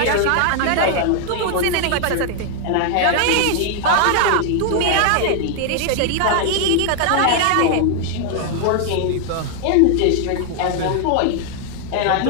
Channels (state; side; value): different; both; correlation 0.00